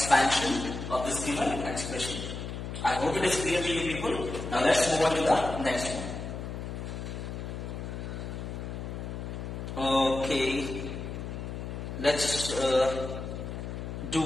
of this given expression. I hope it is clear to you people. Now let's move on to the next one. Okay. Let's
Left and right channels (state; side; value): noise; left; hum, 6 dB below the sound